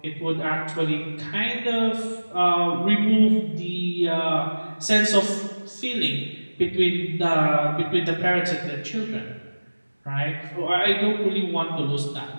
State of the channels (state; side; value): inverted; both; correlation -1.00